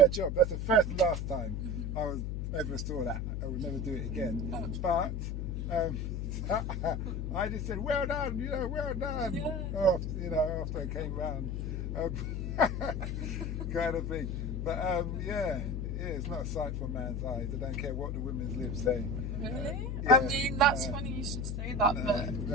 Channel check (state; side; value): noise; left; hum, 2 dB below the sound